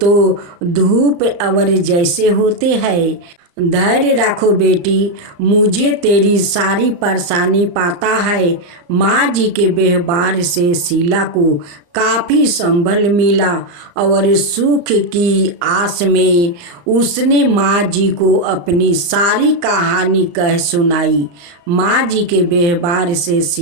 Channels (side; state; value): left; late; 34 ms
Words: धूप और जैसे होते हैं। धैर्य रखो बेटी, मुझे तेरी सारी परेशानी पता है। माँ जी के व्यवहार से शीला को काफ़ी संभल मिला और सुख की आस में उसने माँ जी को अपनी सारी कहानी कह सुनाई। माँ जी के व्यवहार से